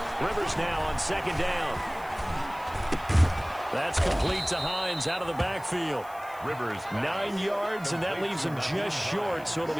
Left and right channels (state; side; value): noise; left; hiss, 23 dB below the sound